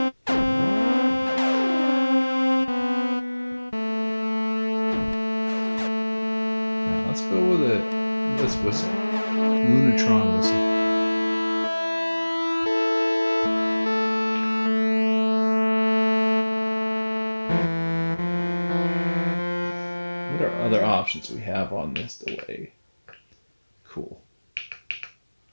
Let's go with this whistle. Lunatron whistle. What are other options we have on this delay? Cool.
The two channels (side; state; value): both; inverted; correlation -1.00